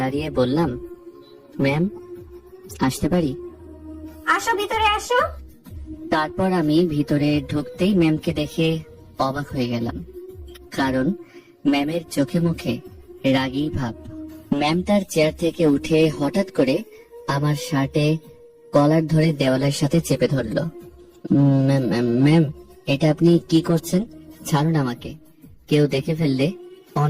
বললাম, ম্যাম আসতে পারি? আসো, ভিতরে আসো। তারপর আমি ভিতরে ঢুকতেই ম্যামকে দেখে অবাক হয়ে গেলাম, কারণ ম্যামের চোখে মুখে রাগী ভাব। ম্যাম তার চেয়ার থেকে উঠে হঠাৎ করে আমার শার্টে কলার ধরে দেওয়ালের সাথে চেপে ধরলো। ম্যাম, এটা আপনি কি করছেন? ছাড়ুন আমাকে, কেউ দেখে ফেললে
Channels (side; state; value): both; identical; correlation 1.00